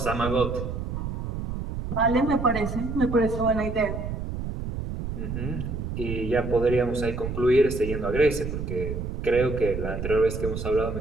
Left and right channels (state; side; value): noise; right; rumble, 5 dB below the sound